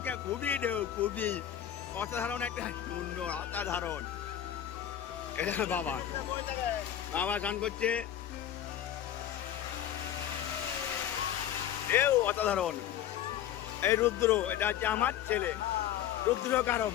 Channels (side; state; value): right; quieter; 10.9 dB